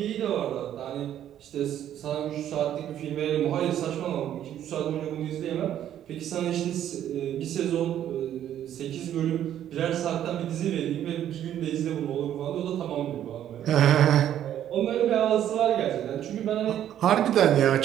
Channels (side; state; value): left; quieter; 10.9 dB